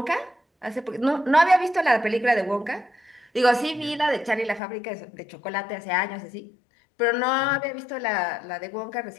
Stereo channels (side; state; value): right; drops out; at 4.6 s